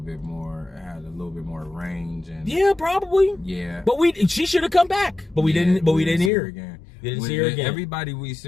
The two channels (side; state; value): right; drops out; at 6.3 s